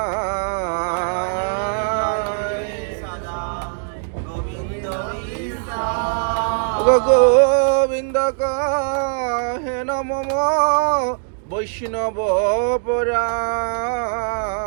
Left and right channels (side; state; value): left; silent; digital silence